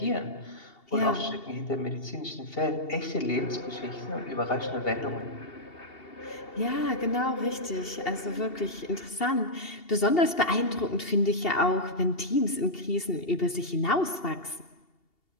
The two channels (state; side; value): late; right; 2.8 ms